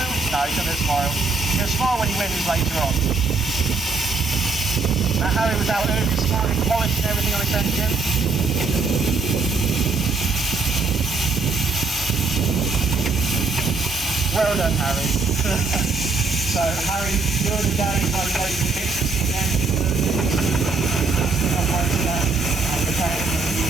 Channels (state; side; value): quieter; left; 4.0 dB